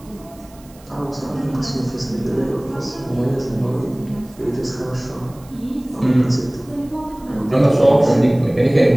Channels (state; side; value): noise; right; hiss, 26 dB below the sound